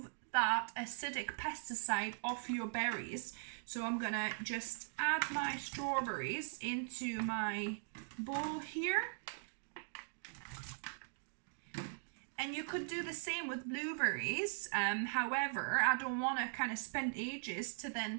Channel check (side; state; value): left; silent; digital silence